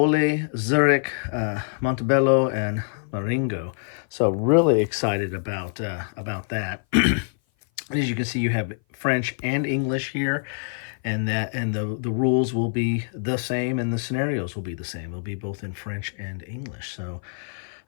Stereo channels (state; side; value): silent; right; 57 dB below the other